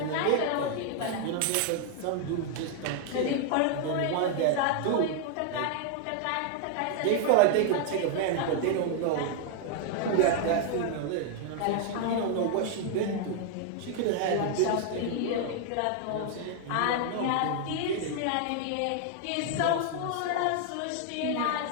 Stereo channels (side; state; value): both; different; correlation 0.00